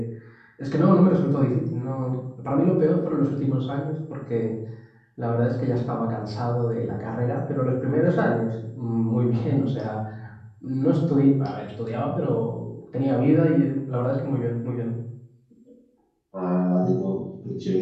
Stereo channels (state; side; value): identical; both; correlation 1.00